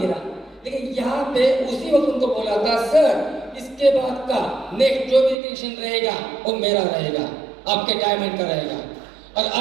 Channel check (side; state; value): left; drops out; at 5.4 s